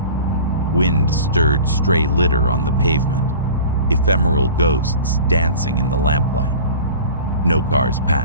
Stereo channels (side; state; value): both; inverted; correlation -0.40